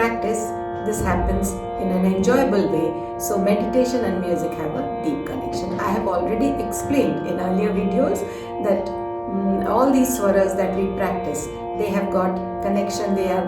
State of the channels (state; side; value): identical; both; correlation 1.00